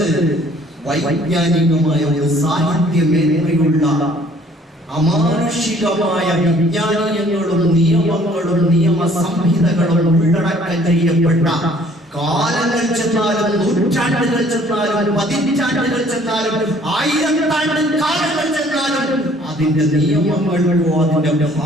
വൈജ്ഞാനികമായ ഒരു സാഹിത്യ മേന്മയുള്ള അമാനുഷികമായ വിജ്ഞാനങ്ങളും നിയമങ്ങളും നിയമ സംഹിതകളും ഉള്ളടക്കം ചെയ്യപ്പെട്ട, കാലങ്ങൾ ചെന്നാലും നൂറ്റാണ്ടുകൾ ചെന്നാലും പതിറ്റാണ്ടുകൾ ചെന്നാലും ആയിരത്താണ്ട് കാലങ്ങൾ ചെന്നാലും അതിന്റെ നിയമങ്ങൾക്കോ അതിന്റെ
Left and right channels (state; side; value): normal; both; correlation 0.58